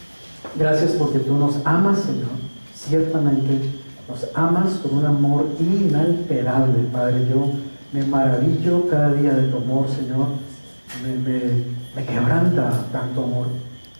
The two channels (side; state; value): both; inverted; correlation -1.00